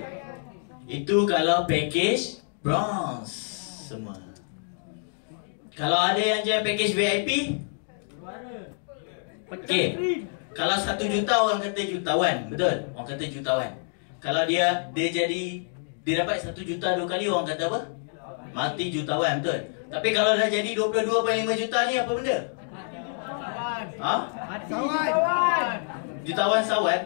Itu kalau package bronze semua. Kalau ada yang jual package VIP, okey. Kalau 1 juta orang kata jutawan, betul? Orang kata jutawan. Kalau dia dapat 1 juta 2 kali, orang kata apa? Mati jutawan, betul? Tapi kalau dah jadi 22.5 juta ni apa benda? Ha? Mati jutawan. Jutawan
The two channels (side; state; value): right; silent; 60 dB below the other